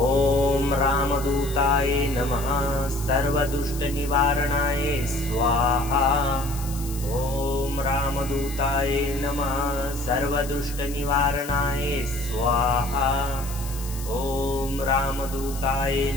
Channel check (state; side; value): noise; left; hiss, 13 dB below the sound